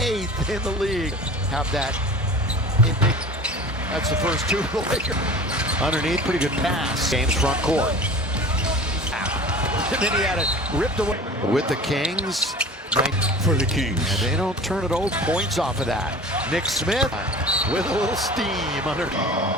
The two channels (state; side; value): normal; both; correlation 0.39